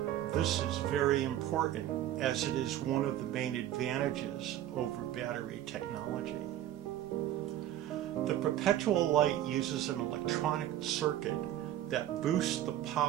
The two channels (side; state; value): left; quieter; 12.4 dB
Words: This is very important, as it is one of the main advantages over battery technology. The perpetual light uses an electronic circuit that boosts the